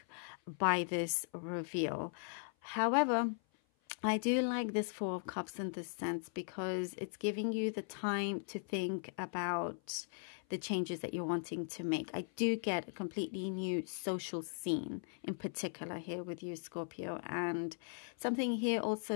by this reveal. However, I do like this Four of Cups in this sense because it's giving you the time to think about the changes that you're wanting to make. I do get a completely new social scene in particular here with you, Scorpio. And something here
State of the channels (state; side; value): silent; right; 52 dB below the other